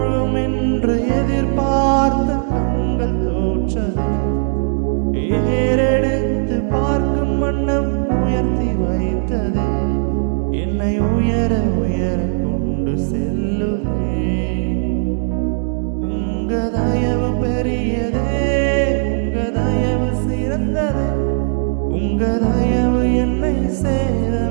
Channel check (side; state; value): left; silent; digital silence